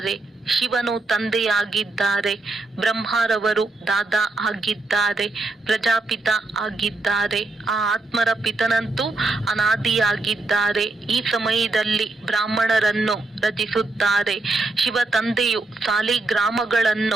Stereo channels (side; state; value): left; quieter; 3.0 dB